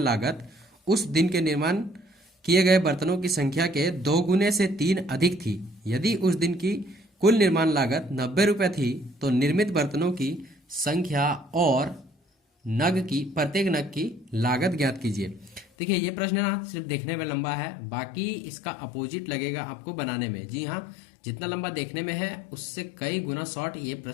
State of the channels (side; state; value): right; drops out; at 15.7 s